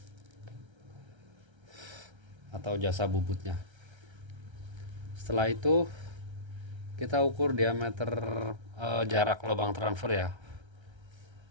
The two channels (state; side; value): late; left; 1.3 ms